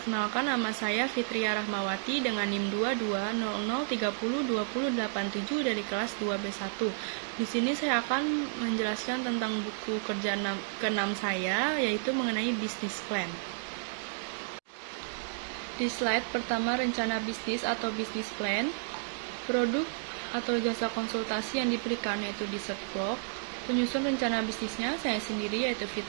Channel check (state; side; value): silent; left; digital silence